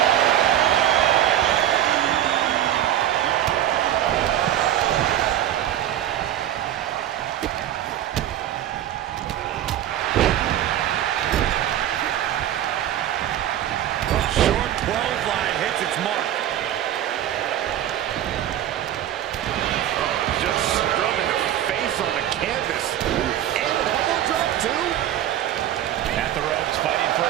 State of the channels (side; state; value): left; quieter; 11.6 dB